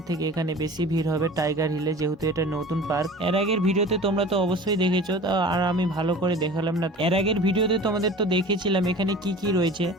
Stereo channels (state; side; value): normal; both; correlation 0.40